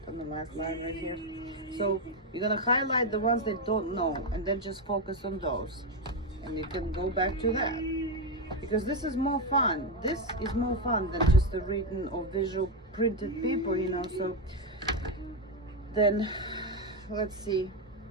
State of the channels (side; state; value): both; normal; correlation 0.07